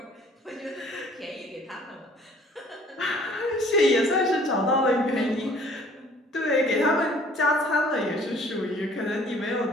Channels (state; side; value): normal; both; correlation 0.55